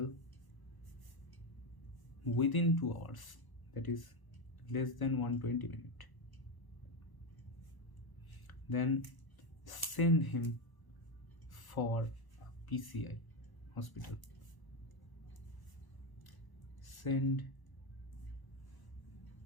within 2 hours, that is less than 120 minutes, then send him for PCI hospital. Send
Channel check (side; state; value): right; late; 1.0 ms